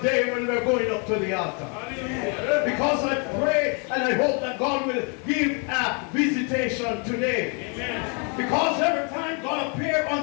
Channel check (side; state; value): right; quieter; 36.6 dB